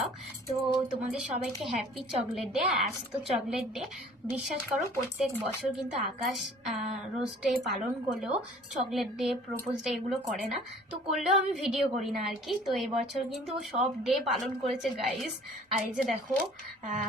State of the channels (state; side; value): normal; both; correlation 0.51